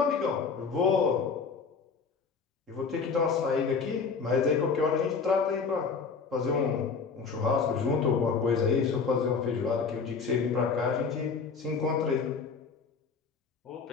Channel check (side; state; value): right; quieter; 5.3 dB